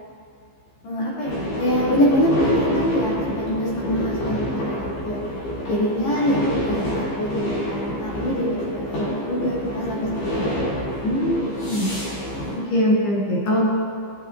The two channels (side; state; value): right; late; 15 ms